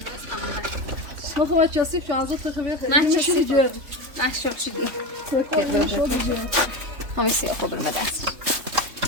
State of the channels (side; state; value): left; late; 3.4 ms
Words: نخواه چسیب شو ازت تخبیه خیلی میشیدی جردی محشاب شدی تکایی شدی جردی همه سیاه خود رو بدست